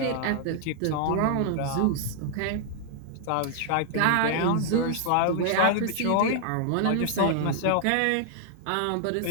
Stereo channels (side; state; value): both; different; correlation 0.00